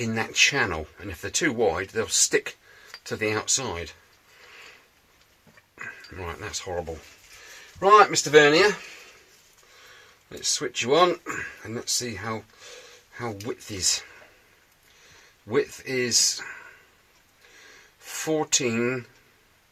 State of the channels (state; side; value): identical; both; correlation 1.00